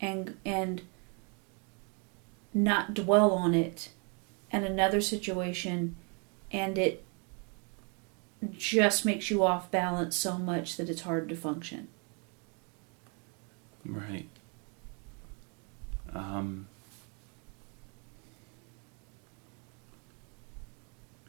not dwell on it, and another situation, and it just makes you off balance so much that it's hard to function. Right.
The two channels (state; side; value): quieter; left; 35.9 dB